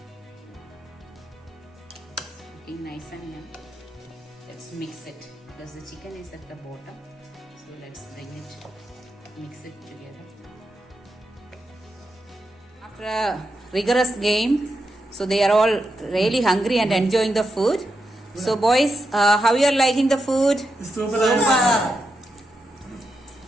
Looking nice and young. Let's mix it because the chicken is at the bottom. So let's bring it, mix it together. After a rigorous game, so they are all really hungry and enjoying the food. So boys, how you are liking the food? Super.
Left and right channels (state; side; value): normal; both; correlation 0.86